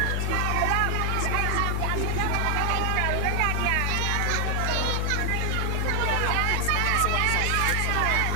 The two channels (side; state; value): both; different; correlation 0.00